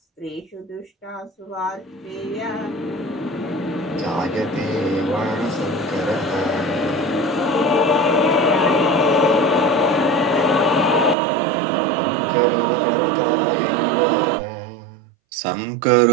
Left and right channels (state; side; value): drops out; left; at 11.2 s